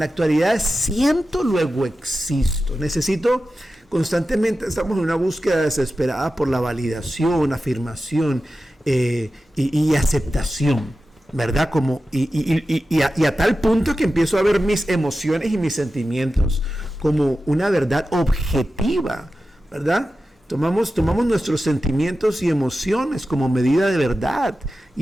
actualidad es siento, luego existo. Necesito constantemente, estamos en una búsqueda desesperada por la validación, afirmación y aceptación, ¿verdad? Y a tal punto que empiezo a ver mis emociones y mis sentimientos como una verdad objetiva, ¿verdad? Tomamos nuestros sentimientos y emociones como medida de verdad.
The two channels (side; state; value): both; normal; correlation 0.93